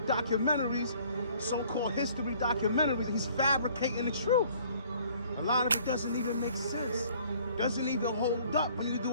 documentaries, so-called history documentaries. He's fabricating the truth. A lot of it doesn't even make sense. Doesn't even hold up when you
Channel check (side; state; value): both; inverted; correlation -0.57